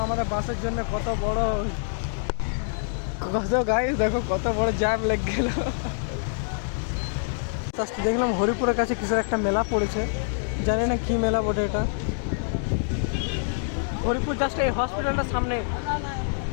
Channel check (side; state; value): right; silent; digital silence